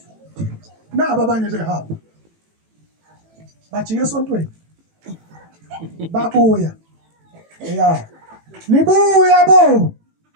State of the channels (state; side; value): late; left; 18 ms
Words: naba abanye behamba. Bajike esontweni. Babuya. Yeah. Nibuya bo.